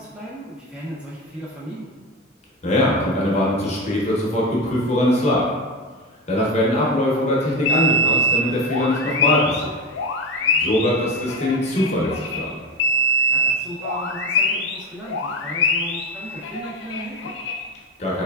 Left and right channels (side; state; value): both; normal; correlation 0.21